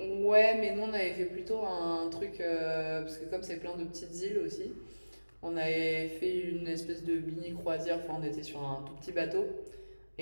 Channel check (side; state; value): both; inverted; correlation -1.00